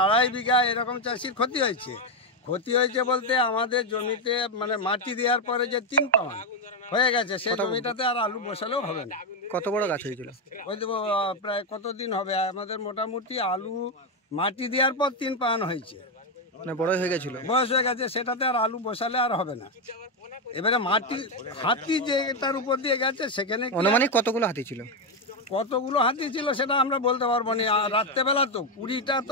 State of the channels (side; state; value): both; normal; correlation 0.06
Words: 2.5 বিঘা এরকম চাষির ক্ষতি হয়েছে। ক্ষতি হয়েছে বলতে আমাদের জমিতে মানে মাটি দেওয়ার পরে যে 3 পাউন্ড হয়ে গেছে, সেই জমিটাতে আর আলু বসালেও হবে না। কত বড় গাছ হয়েছিল? ওই দেবো প্রায় কতদিন হবে, আমাদের মোটামুটি আলু মাটি দেওয়ার পর 3 পাউন্ড হয়েছে, মানে বড় হয়ে গেছিল, বয়স হয়ে গেছে, সেটাতে আর আলু বসালে আর হবে না। এবারে মাটি হাতি যেটার উপর দিয়ে গেছে সেখানে অনুমানিক কতগুলো হাতি ছিল? কতগুলো হাতি ছিল সেটা আমরা বলতে পারবো না। রাত্রেবেলা তো 20টা